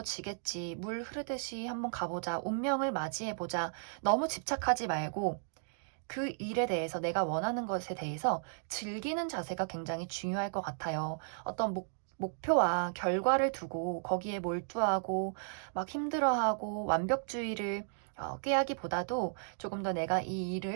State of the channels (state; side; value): silent; left; digital silence